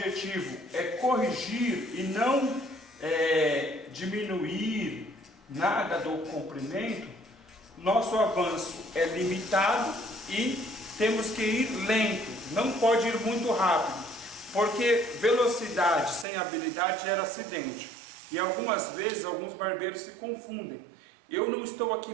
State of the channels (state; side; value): drops out; left; at 16.2 s